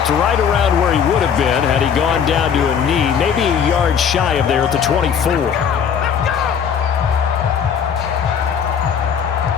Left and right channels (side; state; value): right; quieter; 7.5 dB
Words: right around where he would have been had he gone down to a knee, maybe a yard shy of there at the 24.